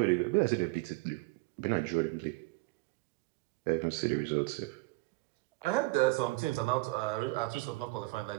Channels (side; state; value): left; quieter; 23.3 dB